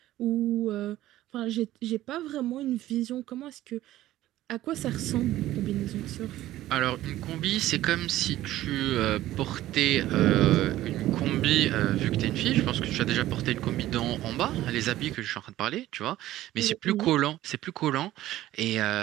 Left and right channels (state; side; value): quieter; left; 14.7 dB